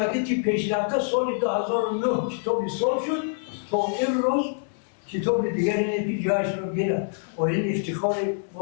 پیشرفته سال 2009 کتابی سال شد تا این روز کتاب دیگری نبی جایش رو گیرد و این افتخار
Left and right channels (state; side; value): silent; right; 61 dB below the other